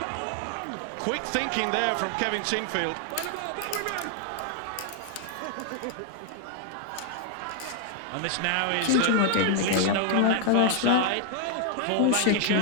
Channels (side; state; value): both; different; correlation 0.00